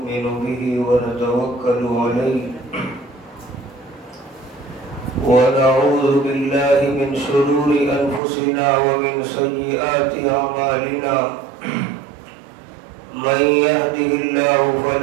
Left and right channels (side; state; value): left; drops out; at 8.2 s